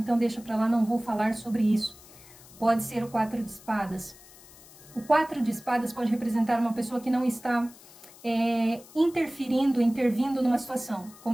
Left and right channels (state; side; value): noise; left; hiss, 22 dB below the sound